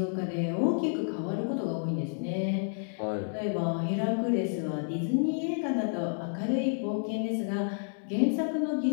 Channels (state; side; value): silent; right; 58 dB below the other